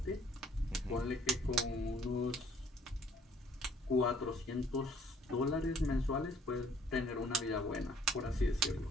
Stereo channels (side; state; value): both; normal; correlation 0.59